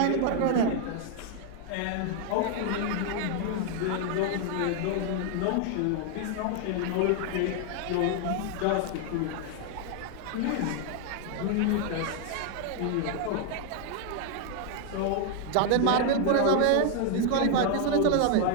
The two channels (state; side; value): different; both; correlation 0.00